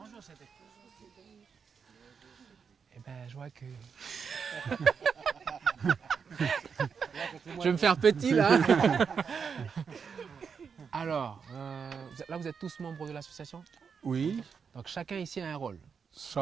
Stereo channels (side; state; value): left; quieter; 6.2 dB